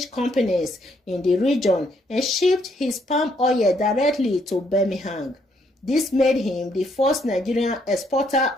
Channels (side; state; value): both; normal; correlation 0.71